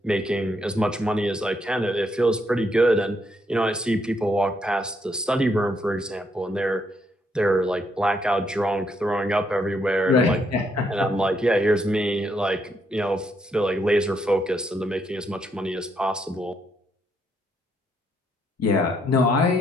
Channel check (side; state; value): both; normal; correlation 0.75